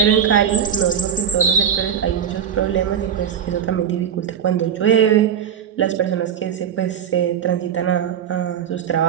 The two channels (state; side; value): quieter; left; 8.4 dB